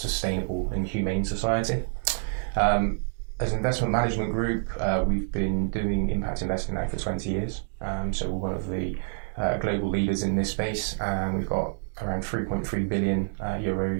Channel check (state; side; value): silent; left; digital silence